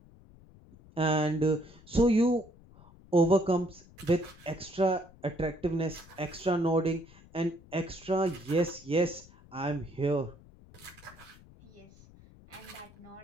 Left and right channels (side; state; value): left; noise; rumble, 23 dB below the sound